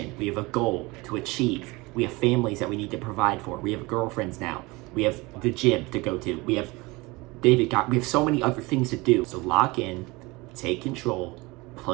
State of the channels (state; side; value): quieter; left; 23.6 dB